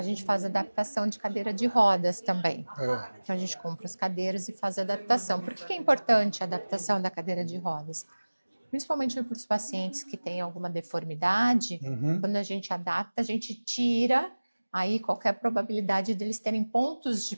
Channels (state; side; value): inverted; both; correlation -1.00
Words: gente faz adaptação de cadeira de rodas também. É. Então a gente compra as cadeiras e faz a adaptação. Por que é importante a adaptação da cadeira de rodas? Principalmente para os pacientes que têm alguma deformidade, Uhum. quando a gente adapta, a gente tira aí qualquer probabilidade deles terem pontos de